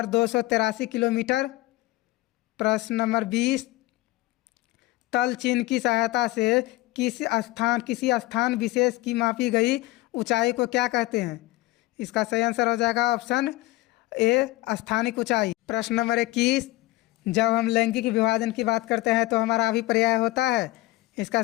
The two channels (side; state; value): right; quieter; 18.6 dB